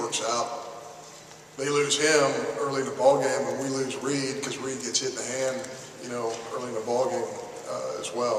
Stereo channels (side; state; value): both; identical; correlation 1.00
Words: out. They lose him early in the ball game, and we lose Reed because Reed gets hit in the hand, you know, early in the ball game as